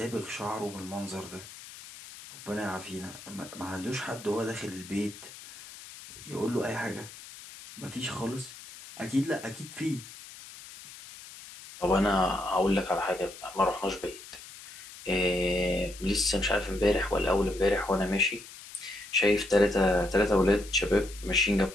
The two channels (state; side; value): noise; left; hiss, 16 dB below the sound